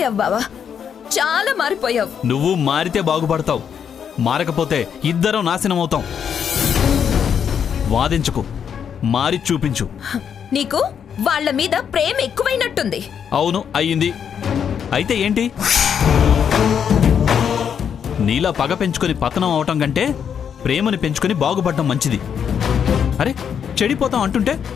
బావా, చాలా మారిపోయావు. నువ్వు మారితే బాగుపడతావు, మారకపోతే ఇద్దరం నాశనం అవుతాం. వాదించుకు, మారి చూపించు. నీకు వాళ్ళ మీద ప్రేమ ఎక్కువైనట్టుంది. అవును, అయ్యింది. అయితే ఏంటి? నీలా పగ పెంచుకొని పతనం అవటం కంటే ప్రేమని పెంచుకొని బాగుపడటం మంచిది. అరే, చెడిపోతాం అంటుంటే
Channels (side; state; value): right; quieter; 7.8 dB